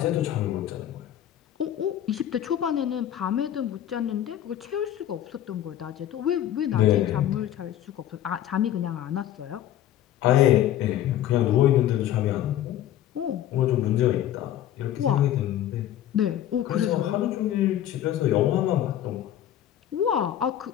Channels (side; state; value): right; quieter; 11.7 dB